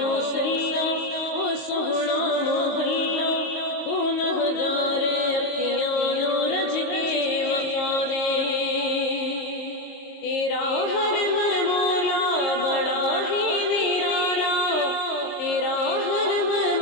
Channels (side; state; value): right; late; 22 ms